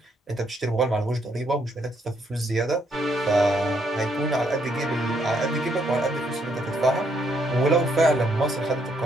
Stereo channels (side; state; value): both; normal; correlation 0.73